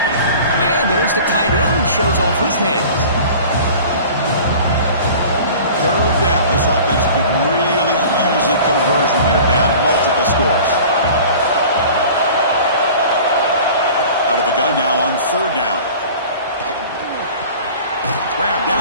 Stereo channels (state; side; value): inverted; both; correlation -0.42